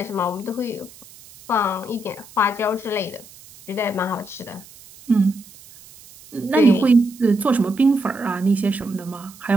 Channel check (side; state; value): right; noise; hiss, 21 dB below the sound